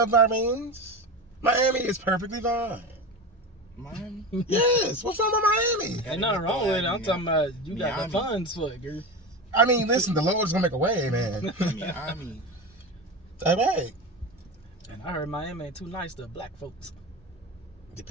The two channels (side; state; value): both; normal; correlation 0.24